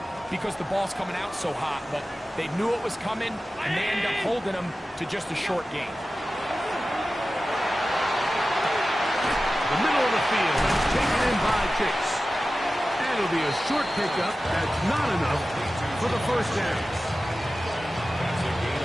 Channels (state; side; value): normal; both; correlation 0.95